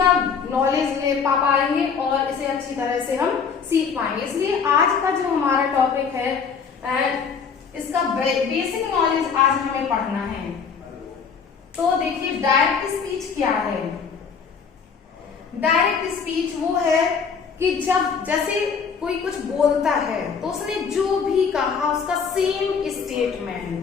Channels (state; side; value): quieter; right; 6.1 dB